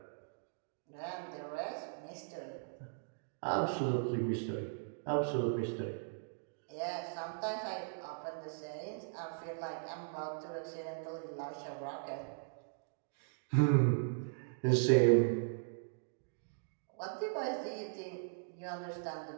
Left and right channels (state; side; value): silent; left; digital silence